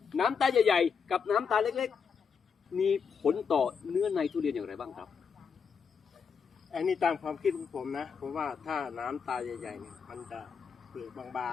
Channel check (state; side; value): quieter; right; 6.3 dB